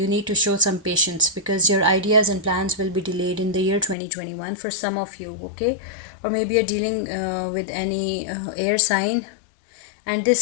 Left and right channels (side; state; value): right; drops out; at 4.0 s